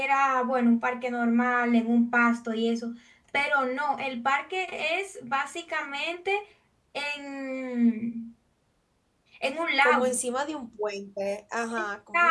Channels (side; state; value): both; identical; correlation 1.00